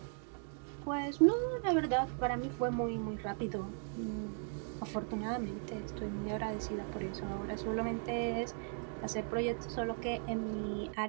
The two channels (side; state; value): left; silent; 53 dB below the other